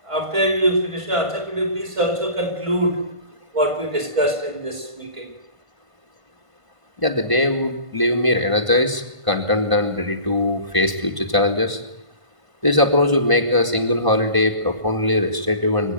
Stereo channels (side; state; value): left; late; 1.5 ms